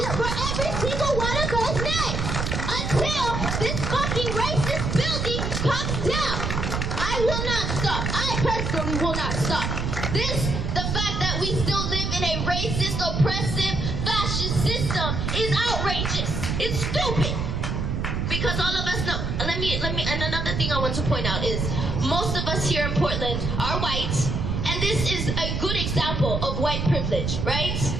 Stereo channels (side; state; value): right; noise; rumble, 1 dB below the sound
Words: for every single one of those names. Until this fucking racist building comes down. I will not stop. I personally will not stop. The fact that we still live in a racist, oppressive, fascist system is outrageous. It's stupid. Because all of us know, and another thing I want to point out is, most of us here in Portland are white, and this is a good example of white privilege, right?